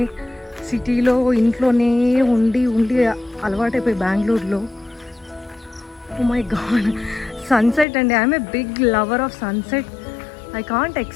సిటీలో ఇంట్లోనే ఉండి అలవాటైపోయి బెంగళూరులో. ఓ మై గాడ్, సన్సెట్ అండి. I'm a big lover of sunset. I can't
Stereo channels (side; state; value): right; drops out; at 7.9 s